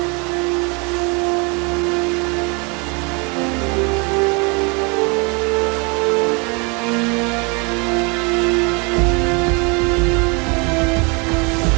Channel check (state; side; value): quieter; left; 31.4 dB